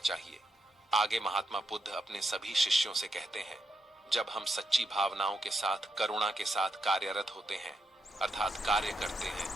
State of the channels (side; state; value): both; normal; correlation 0.82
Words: आगे महात्मा बुद्ध अपने सभी शिष्यों से कहते हैं, जब हम सच्ची भावनाओं के साथ, करुणा के साथ कार्यरत होते हैं, अर्थात कार्य करते हैं,